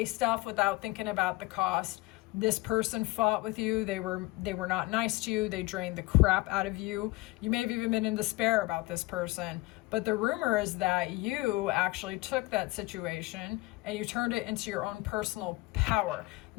stuff without thinking about the cost. This person fought with you. They were not nice to you. They drained the crap out of you. You may have even been in despair about this person. But the rumor is that you actually took that situation and you turned it into your own personal power.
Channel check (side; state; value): right; quieter; 21.4 dB